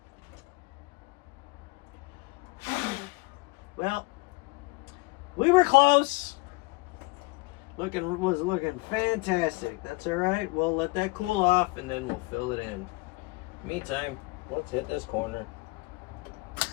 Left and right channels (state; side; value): quieter; right; 24.8 dB